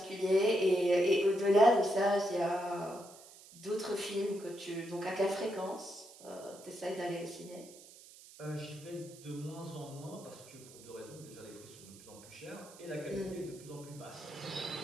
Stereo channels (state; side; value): noise; right; hiss, 20 dB below the sound